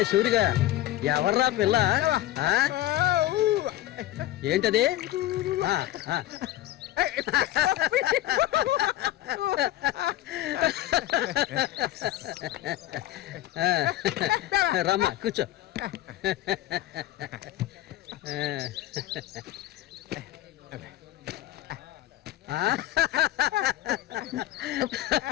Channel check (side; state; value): right; quieter; 14.7 dB